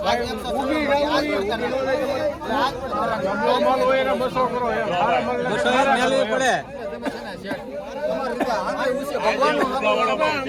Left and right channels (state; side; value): identical; both; correlation 1.00